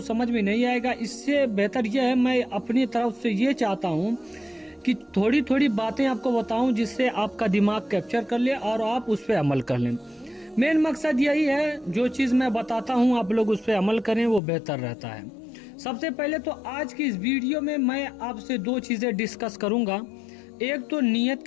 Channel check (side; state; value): right; drops out; at 14.4 s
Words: समझ में नहीं आएगा। इससे बेहतर यह है मैं अपनी तरफ से ये चाहता हूँ कि थोड़ी थोड़ी बातें आपको बताऊं जिससे आपका दिमाग कैप्चर कर ले और आप उस पर अमल कर लें। मेन मकसद यही है, जो चीज़ मैं बताता हूँ आप लोग उस पर अमल करें, वो बेहतर रहता है। सबसे पहले तो आज की इस वीडियो में मैं आपसे 2 चीज़ें डिस्कस करूँगा। एक तो नियत